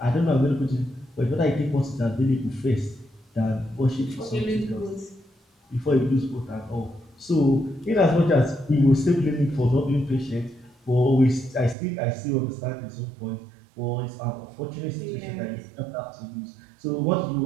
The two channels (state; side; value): drops out; left; at 11.8 s